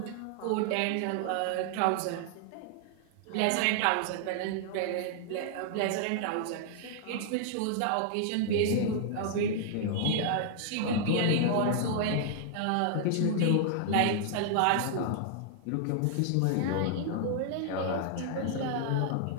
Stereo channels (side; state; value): both; different; correlation 0.00